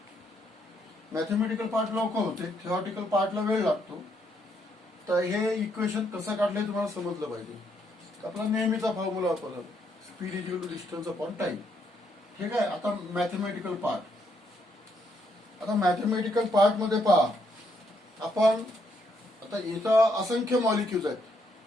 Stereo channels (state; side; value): normal; both; correlation 0.74